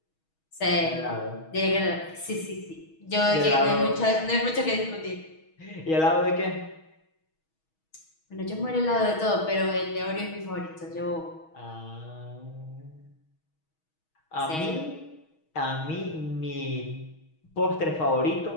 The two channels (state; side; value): late; right; 6.3 ms